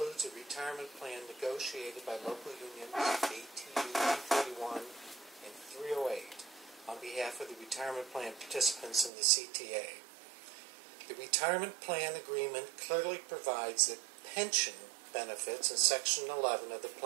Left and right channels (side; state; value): left; drops out; at 9.1 s